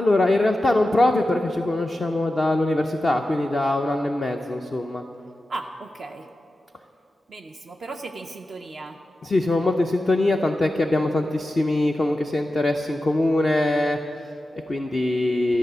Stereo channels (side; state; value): both; normal; correlation 0.93